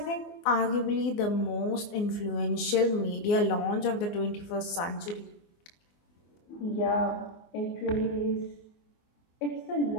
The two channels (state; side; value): late; right; 24 ms